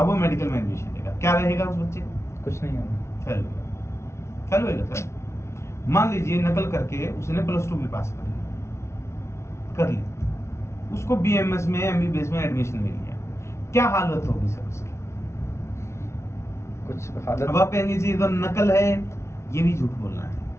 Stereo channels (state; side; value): late; right; 0.13 ms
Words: वो मेडिकल में एडमिशन लेगा, क्या रहेगा उस बच्चे को? कुछ नहीं होगा, फेल होगा सर। मान लीजिए नकल करके उसने +2 भी पास कर ली, उसको BMS में, MBBS में एडमिशन मिल गया, क्या हालत होगी सर उसकी? कुछ हालत। अब आप कहेंगे जी इधर नकल है, ये भी झूठ बोलना है।